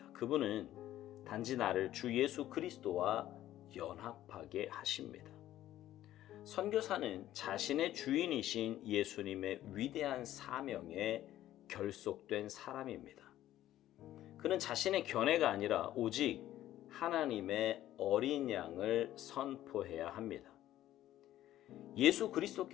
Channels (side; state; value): right; quieter; 13.4 dB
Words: 그분은 단지 나를 주 예수 그리스도와 연합하게 하십니다. 선교사는 자신의 주인이신 예수님의 위대한 사명에 결속된 사람입니다. 그는 자신의 견해가 아니라 오직 하나님의 어린 양을 선포해야 합니다. 예수